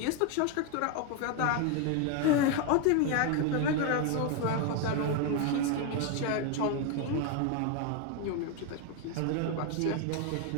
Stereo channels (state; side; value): different; both; correlation 0.01